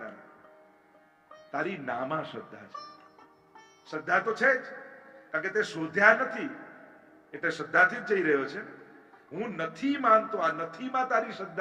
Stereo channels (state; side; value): identical; both; correlation 1.00